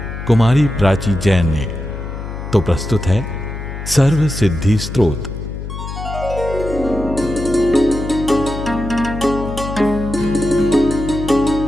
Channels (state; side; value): noise; left; hum, 8 dB below the sound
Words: कुमारी प्राची जैन ने। तो प्रस्तुत है सर्व सिद्धि स्तोत्र।